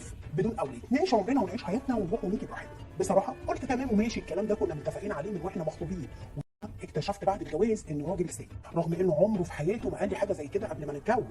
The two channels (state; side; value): identical; both; correlation 1.00